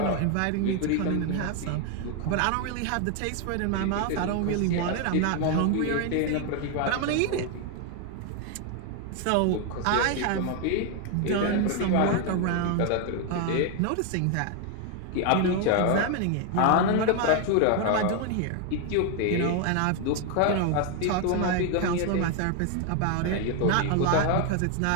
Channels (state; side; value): different; both; correlation 0.01